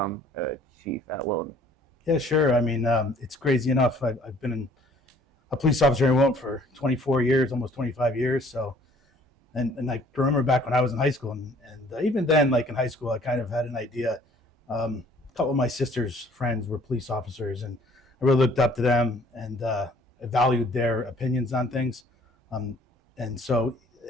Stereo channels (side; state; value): both; normal; correlation 0.57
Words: a chief at Wilton? Yeah, sure. I mean, it's crazy enough. I've been a police officer in Wilton for 24 years, almost 25 years. So, and I remember back when I was in high school, and even then, like in high school, I kind of had an idea. A couple of my sister's friends were police officers, and I really looked up to them, and I valued their opinions on things. And so,